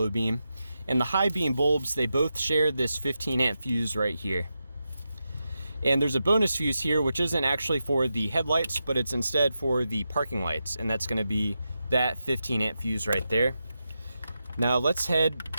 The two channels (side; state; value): both; inverted; correlation -0.89